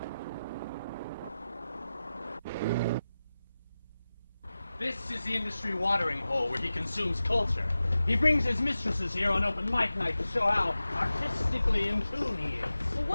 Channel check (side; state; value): both; inverted; correlation -0.94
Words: This is the industry watering hole where he consumes culture. He brings his mistresses here on open mic night to show how artistically in tune he is. Well,